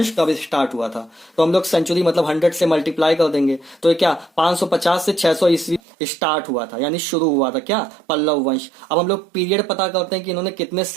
कब स्टार्ट हुआ था, तो हम लोग सेंचुरी मतलब 100 से मल्टीप्लाई कर देंगे, तो ये क्या 550 से 600 ईस्वी स्टार्ट हुआ था, यानी शुरू हुआ था क्या, पल्लव वंश। अब हम लोग पीरियड पता करते हैं कि इन्होंने कितने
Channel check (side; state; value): left; drops out; at 5.8 s